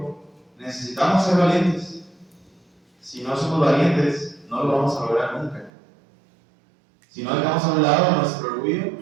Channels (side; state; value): left; drops out; at 5.7 s